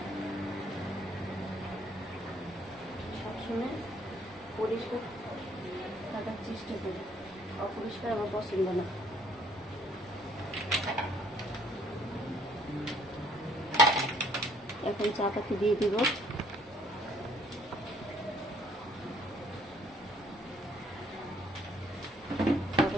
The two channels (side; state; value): both; normal; correlation 0.63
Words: সবসময় পরিষ্কার থাকার চেষ্টা করি, অপরিষ্কার আমার পছন্দ না। এখন চা পাতি দিয়ে দিব। চা